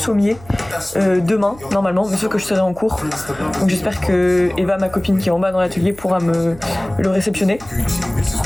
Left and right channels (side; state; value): right; noise; hum, 20 dB below the sound